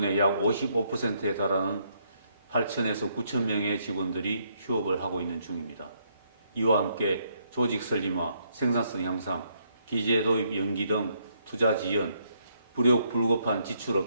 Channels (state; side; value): inverted; both; correlation -0.73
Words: 약 55%에 달하는 8,000에서 9,000명의 직원들이 휴업을 하고 있는 중입니다. 이와 함께 조직 설림화, 생산성 향상, 기재 도입 연기 등 투자 지연, 불급한 지출